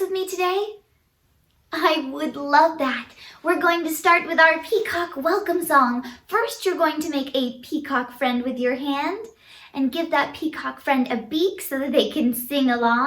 with me today? I would love that. We're going to start with our peacock welcome song. First, you're going to make a peacock friend with your hand and give that peacock friend a beak so that they can sing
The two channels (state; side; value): identical; both; correlation 1.00